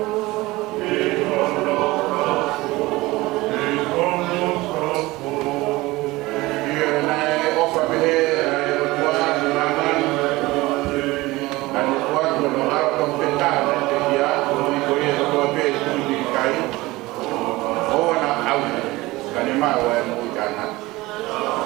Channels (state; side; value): quieter; left; 20.1 dB